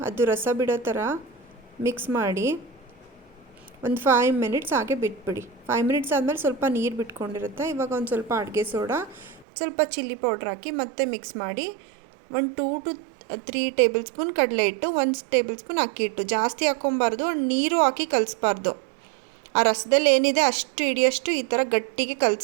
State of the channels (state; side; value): drops out; left; at 9.5 s